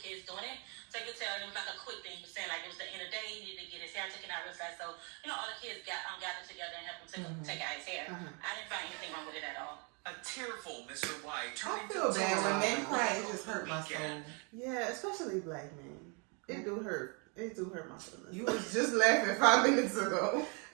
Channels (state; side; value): quieter; left; 34.6 dB